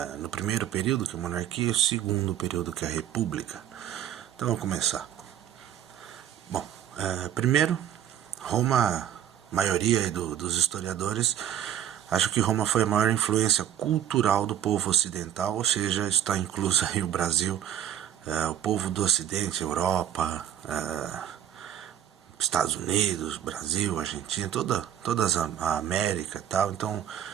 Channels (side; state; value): left; quieter; 10.3 dB